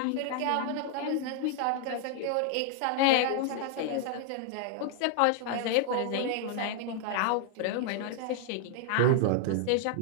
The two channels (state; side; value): different; both; correlation 0.00